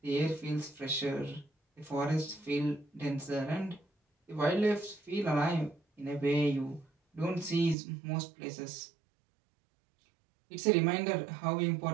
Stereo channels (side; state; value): left; drops out; at 7.8 s